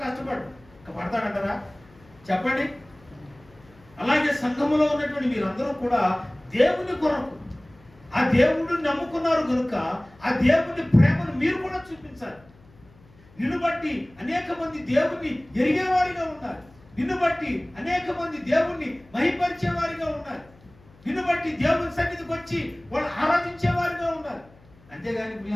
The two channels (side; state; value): left; noise; hum, 27 dB below the sound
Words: పడతాడంటారా? చెప్పండి. అలాగే సంఘములో ఉన్నటువంటి మీరందరూ కూడా దేవుని కొరకు, ఆ దేవుడిని నమ్ముకున్నారు కనుక ఆ దేవుని ప్రేమను మీరు కూడా చూపించాలి. నిన్ను బట్టి అనేక మంది దేవుణ్ణి ఎరిగేవారిగా ఉండాలి. నిన్ను బట్టి అనేక మంది దేవుణ్ణి మహిమపరిచేవారిగా ఉండాలి. నిన్ను బట్టి దేవుని సన్నిధికి వచ్చి వాళ్ళు ఆరాధించేవారిగా ఉండాలి. అంతేగాని